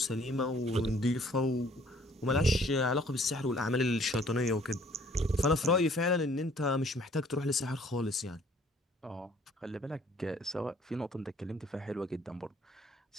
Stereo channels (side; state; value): both; normal; correlation 0.58